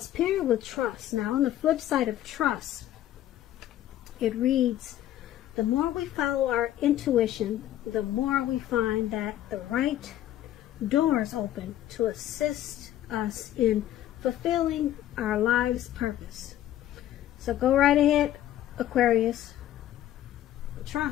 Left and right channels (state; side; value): quieter; right; 12.8 dB